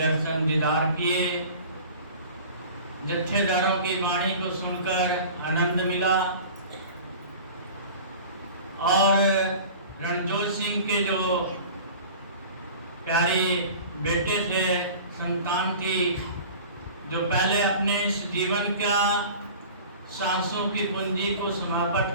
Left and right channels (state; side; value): inverted; both; correlation -0.40